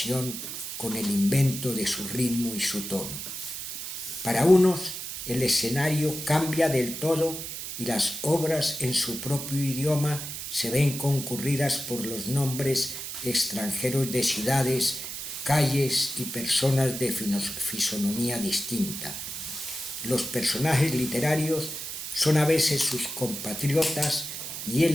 con el invento de su ritmo y su tono. Para unos el escenario cambia del todo y las obras en su propio idioma se ven concurridas por los nombres extranjeros de ciudades, calles y personas de fisonomía distinta. Los personajes literarios son a veces sus compatriotas y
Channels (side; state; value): right; noise; hiss, 7 dB below the sound